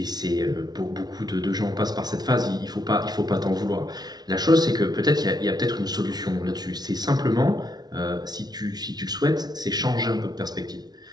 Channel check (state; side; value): late; left; 0.19 ms